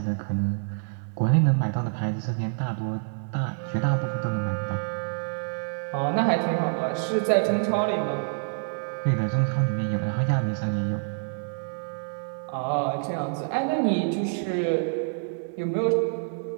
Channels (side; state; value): left; silent; digital silence